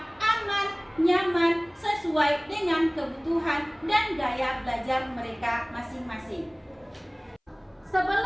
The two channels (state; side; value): identical; both; correlation 1.00